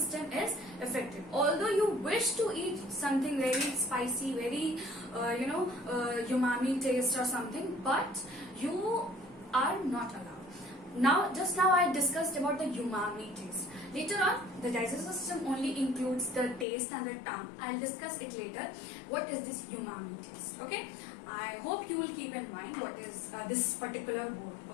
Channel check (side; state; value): right; drops out; at 16.7 s